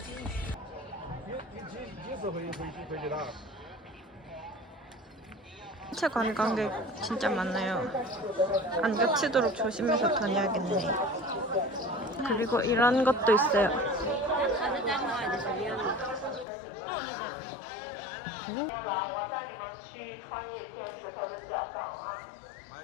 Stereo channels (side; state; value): right; drops out; at 16.4 s